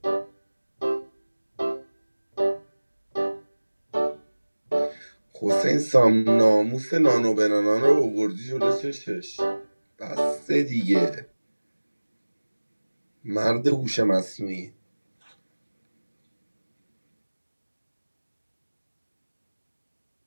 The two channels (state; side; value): inverted; both; correlation -1.00